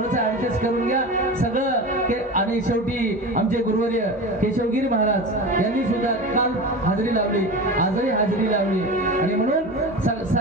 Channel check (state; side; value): normal; both; correlation 0.29